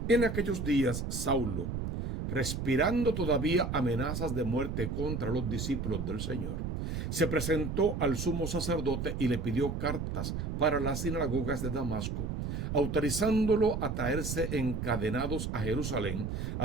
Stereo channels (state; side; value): noise; right; rumble, 3 dB below the sound